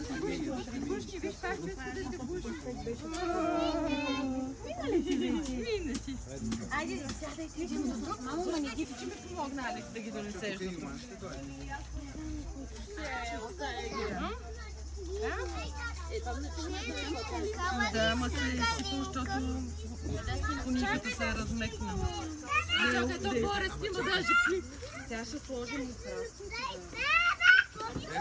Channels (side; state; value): both; identical; correlation 1.00